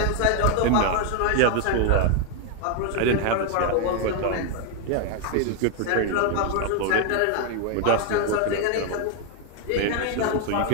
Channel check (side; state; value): both; different; correlation 0.01